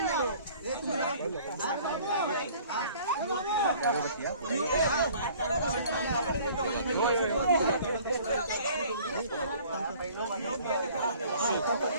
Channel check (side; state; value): both; inverted; correlation -0.52